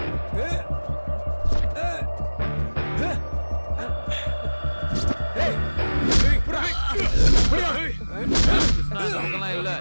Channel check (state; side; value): inverted; both; correlation -1.00